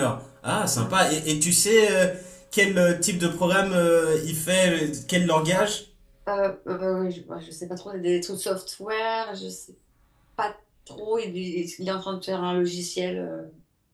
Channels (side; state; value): both; identical; correlation 1.00